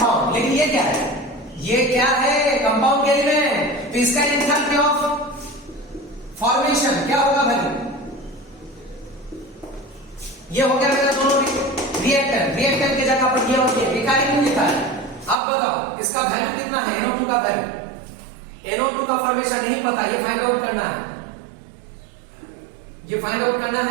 लेकिन ये क्या है, ये क्या है, कंपाउंड के एलिमेंट। तो इसका एंथैल्पी ऑफ फॉर्मेशन क्या होगा, वैल्यू ये हो गया मेरा दोनों रिएक्टेंट। रिएक्टेंट की जगह पर ये और ये लिखा है, क्यों लिखा है? अब बताओ इसका वैल्यू कितना है, NO2 का वैल्यू। NO2 का फॉर्मेशन नहीं पता, ये फाइंड आउट करना है, ये फाइंड आउट करना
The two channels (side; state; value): left; drops out; at 15.4 s